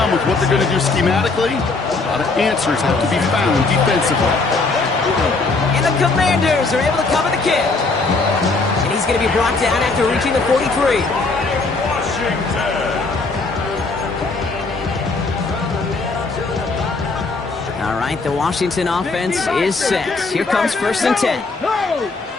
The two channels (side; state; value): right; quieter; 3.8 dB